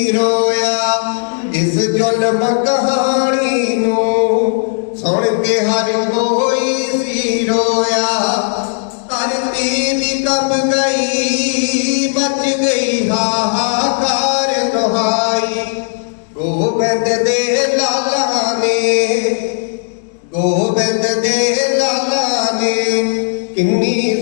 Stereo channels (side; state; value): right; silent; 60 dB below the other